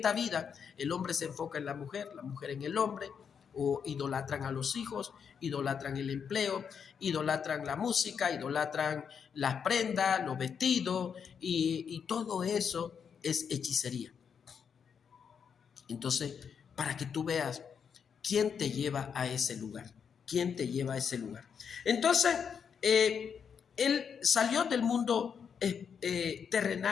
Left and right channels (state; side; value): quieter; right; 7.0 dB